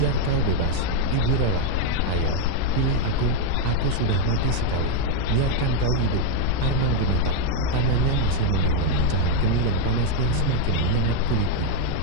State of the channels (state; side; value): different; both; correlation 0.01